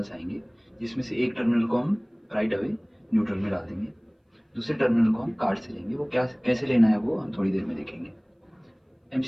आएंगे, जिसमें से एक टर्मिनल को हम राइट अवे न्यूट्रल में डाल देंगे, दूसरे टर्मिनल को हम कार्ड से लेंगे। वो क्या कैसे लेना है वो हम थोड़ी देर में देखेंगे।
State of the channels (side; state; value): both; identical; correlation 1.00